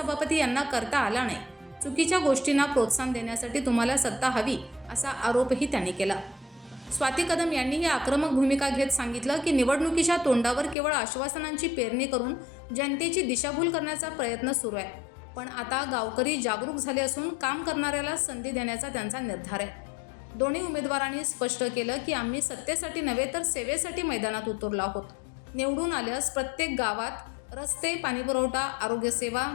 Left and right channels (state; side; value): drops out; right; at 10.8 s